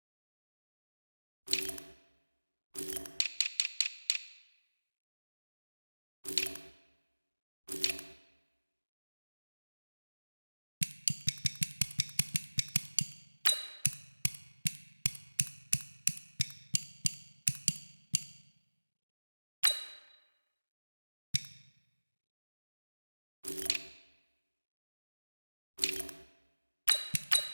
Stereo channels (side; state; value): both; inverted; correlation -1.00